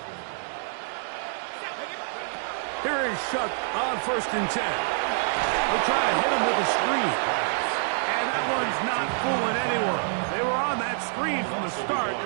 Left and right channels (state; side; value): silent; left; digital silence